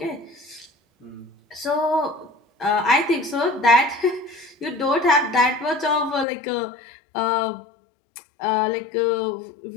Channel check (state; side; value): drops out; right; at 6.2 s